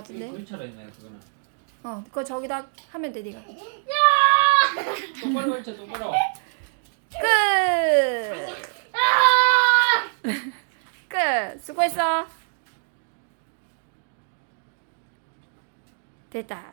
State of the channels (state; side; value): silent; left; digital silence